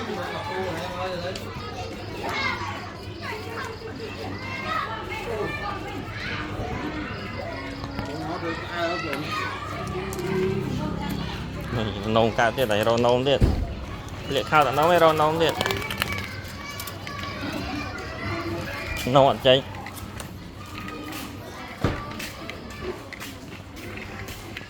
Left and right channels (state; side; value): identical; both; correlation 1.00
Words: nông cao tiết này rồi nông tiết liệt khao tận nó mới rồi nông tiết nông ăn cháy